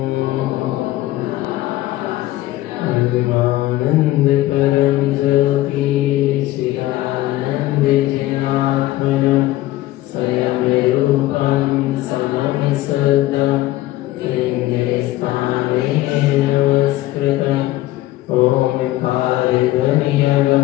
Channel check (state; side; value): quieter; right; 16.3 dB